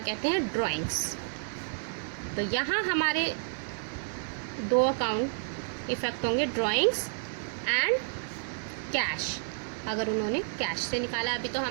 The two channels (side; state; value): left; silent; digital silence